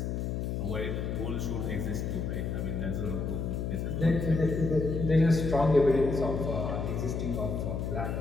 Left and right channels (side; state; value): left; noise; hum, 2 dB below the sound